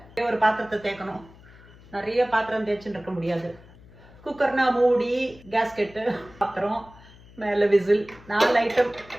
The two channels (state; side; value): noise; left; hum, 23 dB below the sound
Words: ஒரு பாத்திரத்தை தேய்க்கணும். நிறைய பாத்திரம் தேய்ச்சின்னு இருக்க முடியாது. குக்கர்னா மூடி, கேஸ்கெட்டு, பாத்திரம், மேலே விசில் 4 ஐட்டம்